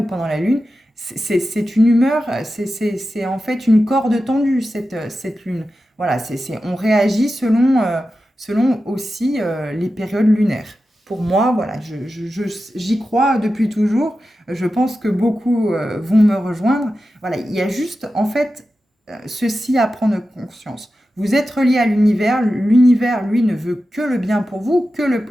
pendant la lune. C'est une humeur, c'est en fait une corde tendue cette lune. Voilà, on réagit selon aussi les périodes lunaires. Pour moi, voilà, j'y crois depuis toujours. Je pense que beaucoup vont me rejoindre. Voilà, il y a juste, en fait, ceci à prendre conscience. Vous êtes relié à l'univers. L'univers, lui, ne veut que le bien pour vous, que le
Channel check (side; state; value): both; normal; correlation 0.92